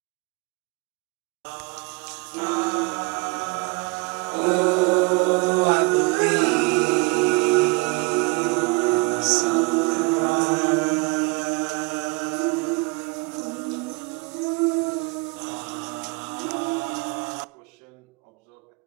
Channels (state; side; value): quieter; left; 27.5 dB